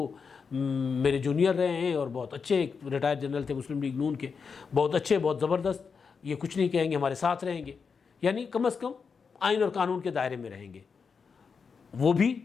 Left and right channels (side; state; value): right; quieter; 5.6 dB